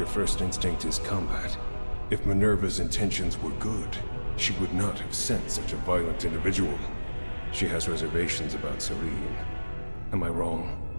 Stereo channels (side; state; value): both; inverted; correlation -1.00